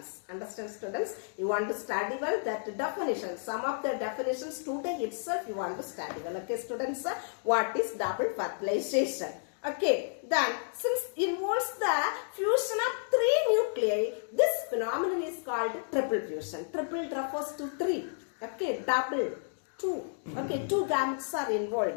Understand students? You want to study well that definition. Some of the definitions today itself you want to study well. Okay students, what is double fertilization? Okay, then since involves the fusion of three nuclei, this phenomenon is called triple fusion. Triple refers to three. Okay, double, two. Okay, two gametes are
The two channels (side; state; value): right; silent; digital silence